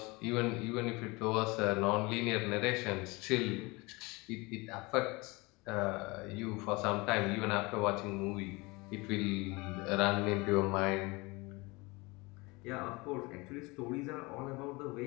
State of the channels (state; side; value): quieter; right; 24.7 dB